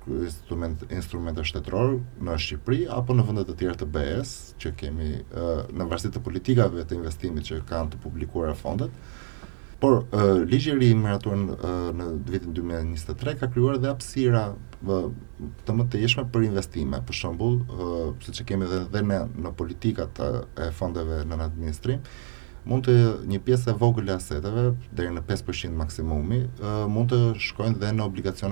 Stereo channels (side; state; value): left; silent; 56 dB below the other